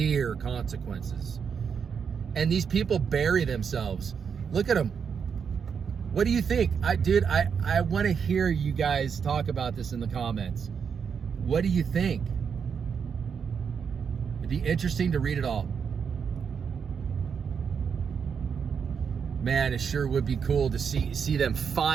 consequences. And these people bury themselves. Look at them. What do you think? I want to hear you guys talk about this in the comments. What do you think? It'd be interesting to read it all. Man, it sure would be cool to see them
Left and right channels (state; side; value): quieter; left; 6.7 dB